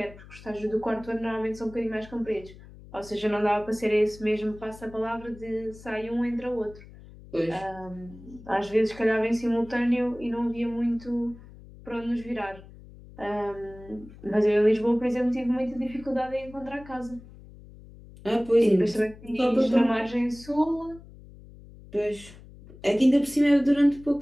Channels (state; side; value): noise; left; hum, 19 dB below the sound